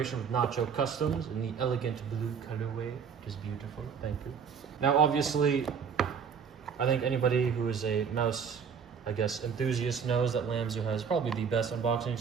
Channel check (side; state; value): left; quieter; 6.6 dB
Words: with Nacho Customs in the elegant blue colorway, which is beautiful. Thank you. Now, obviously, I think anybody who is a mouse, I guess, enthusiast knows that LAMZU has probably the best unboxing